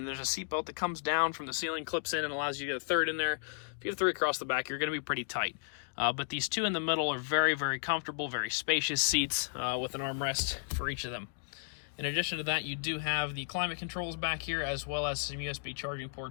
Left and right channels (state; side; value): silent; right; digital silence